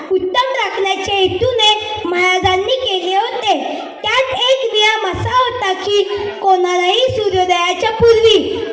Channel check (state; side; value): identical; both; correlation 1.00